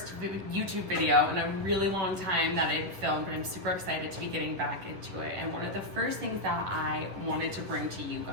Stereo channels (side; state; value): left; late; 10 ms